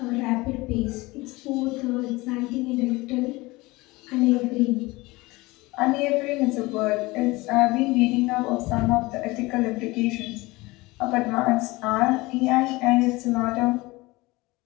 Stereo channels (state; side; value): quieter; right; 21.9 dB